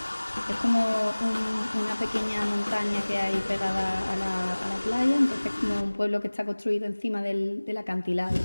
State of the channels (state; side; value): inverted; both; correlation -1.00